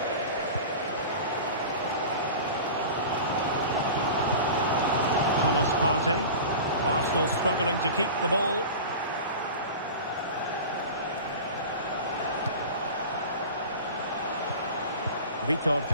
Thomas Partey. Arsenal struggling to keep the ball. Vitor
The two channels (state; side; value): inverted; both; correlation -0.34